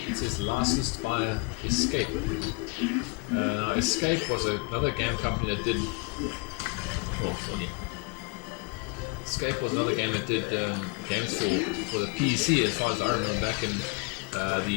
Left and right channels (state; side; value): quieter; right; 31.0 dB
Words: says licensed by Escape. Now Escape was another game company that did. Escape was another game that did games for the PC, as far as I remember, back in